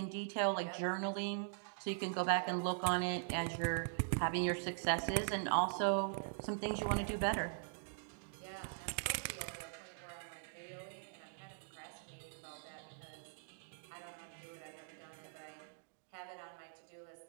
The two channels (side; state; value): left; silent; digital silence